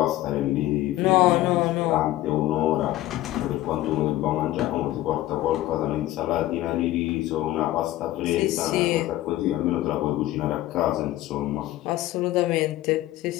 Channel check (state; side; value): quieter; right; 15.5 dB